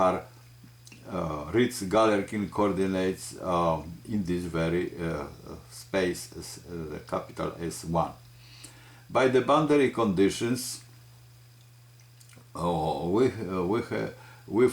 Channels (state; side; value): identical; both; correlation 1.00